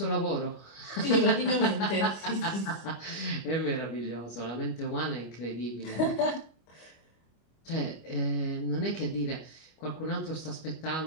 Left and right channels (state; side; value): late; right; 25 ms